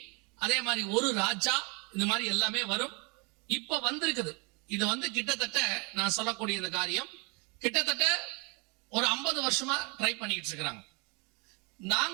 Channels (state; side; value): quieter; left; 30.1 dB